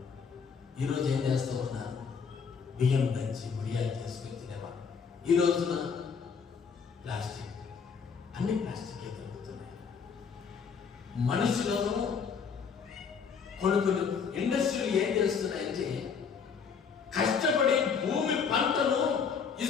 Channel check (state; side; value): quieter; right; 6.1 dB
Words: ఈరోజు ఏం చేస్తూ ఉన్నారు? బియ్యం దంచి వడియాలు చేసుకొని తినేవాళ్ళు. ఈ రోజున ప్లాస్టిక్, అన్ని ప్లాస్టికే దొరుకుతున్నాయి. మనుషులను కొన్ని ఇండస్ట్రీలు ఏం చేస్తున్నాయంటే, కష్టపడి భూమి పంటను